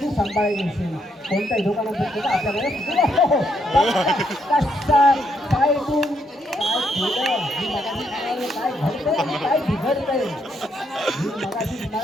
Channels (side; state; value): both; normal; correlation 0.75